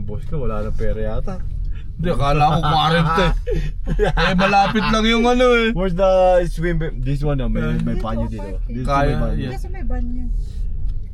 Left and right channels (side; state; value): both; identical; correlation 1.00